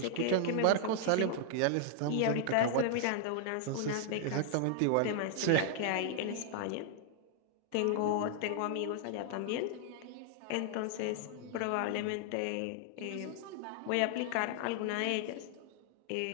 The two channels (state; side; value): different; both; correlation 0.00